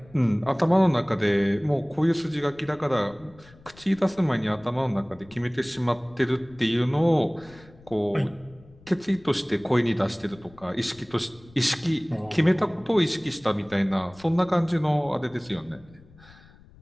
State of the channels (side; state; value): left; noise; rumble, 25 dB below the sound